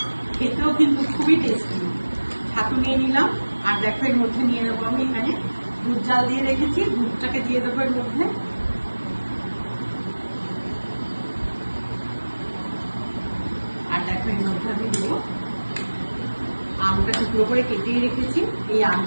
খেতেও কিন্তু খুবই টেস্টি। ছাতু নিয়ে নিলাম, আর দেখো এর মধ্যে নিয়ে নেবো আমি এখানে দুধ জাল দিয়ে রেখেছি, দুধটাকে দিয়ে দেবো এর মধ্যে। আর দেখো এর মধ্যে আমি দেবো আমটা টুকরো করে কেটেই রেখেছি, এই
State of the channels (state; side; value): inverted; both; correlation -1.00